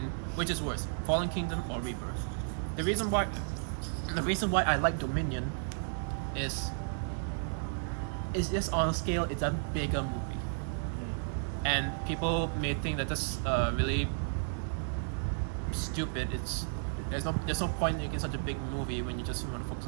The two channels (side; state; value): left; silent; digital silence